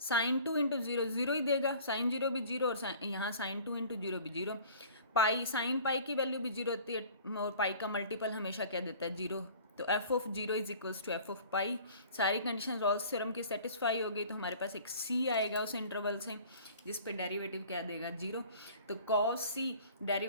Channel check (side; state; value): both; inverted; correlation -0.47